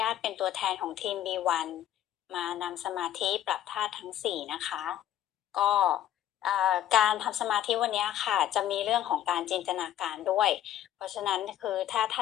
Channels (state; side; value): quieter; right; 11.7 dB